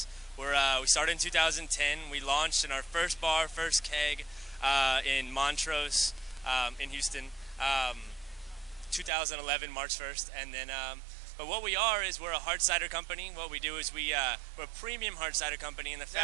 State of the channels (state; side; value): drops out; left; at 9.1 s